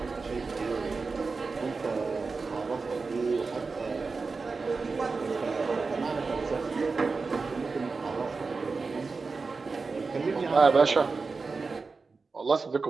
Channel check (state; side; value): quieter; left; 4.3 dB